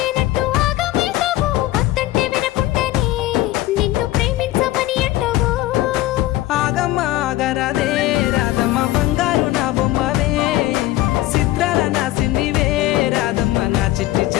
ఆగరాదే రాధమ్మ బంగారు నా బొమ్మవే చిత్రాల నా సిన్నివే రాధమ్మ నా చిట్టి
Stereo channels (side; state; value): right; quieter; 16.1 dB